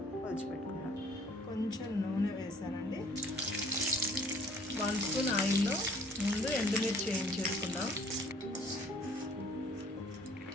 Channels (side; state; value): both; normal; correlation 0.56